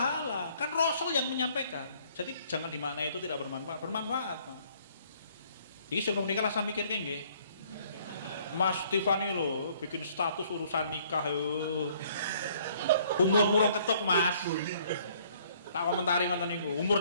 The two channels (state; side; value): inverted; both; correlation -0.61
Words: kan Rasul yang menyampaikan. Jadi jangan dimaknai itu tidak bermanfaat, bermanfaat, Pak. Iki sing nikah lah saya mikir nggih. Mas Tiffany lho bikin status urusan nikah yo. Umur rong ketuk, Mas. Tak komentari ngoten niku.